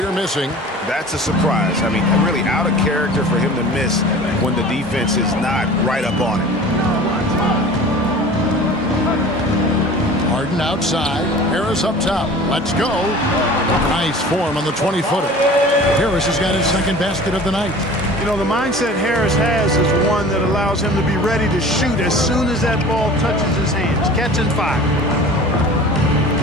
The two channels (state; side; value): normal; both; correlation 0.41